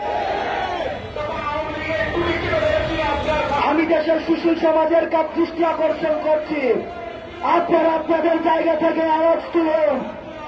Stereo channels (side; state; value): both; identical; correlation 1.00